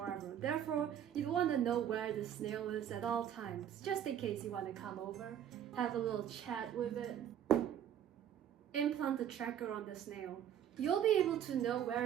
Therefore, you wanna know where the snail is at all times, just in case you wanna come over, have a little chat with it. Implant the tracker on the snail. You'll be able to know where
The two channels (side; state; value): left; quieter; 9.8 dB